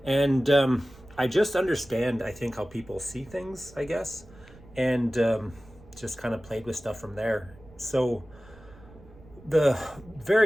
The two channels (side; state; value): right; noise; rumble, 23 dB below the sound